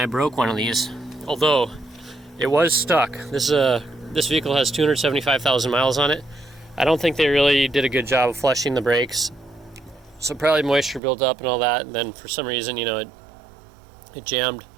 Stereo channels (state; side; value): drops out; left; at 11.0 s